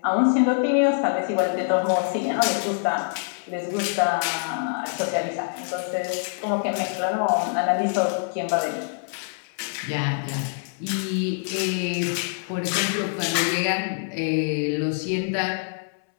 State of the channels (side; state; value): right; silent; 62 dB below the other